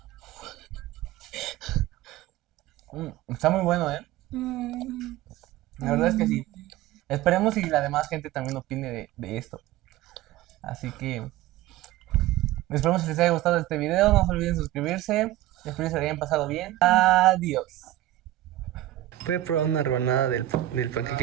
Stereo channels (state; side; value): quieter; left; 15.0 dB